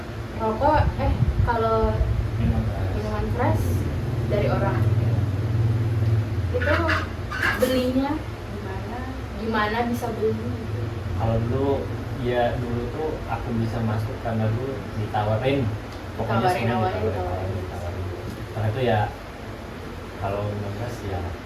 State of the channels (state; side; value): identical; both; correlation 1.00